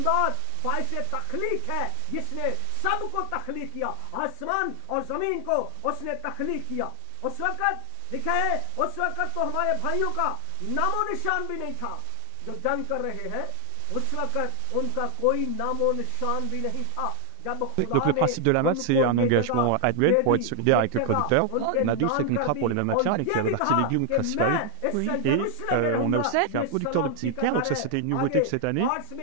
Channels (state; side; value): different; both; correlation 0.00